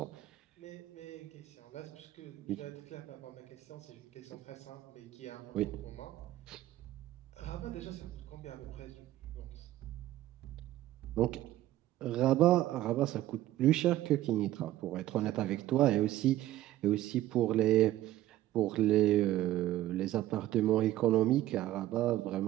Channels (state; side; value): quieter; left; 14.6 dB